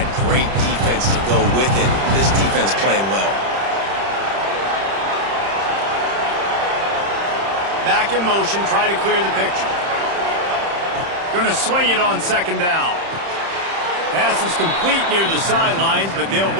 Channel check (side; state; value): left; late; 31 ms